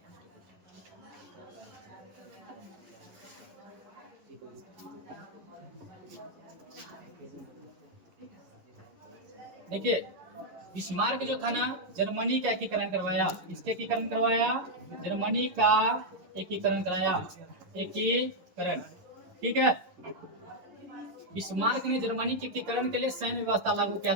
देखिए बिस्मार्क जो था ना, जर्मनी का एकीकरण करवाया। इसके एकीकरण करवाया, जर्मनी का एकीकरण कराया, एकीकरण, ठीक है। बिस्मार्क ने जर्मनी के एकीकरण के लिए सैन्य व्यवस्था लागू किया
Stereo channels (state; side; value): late; left; 11 ms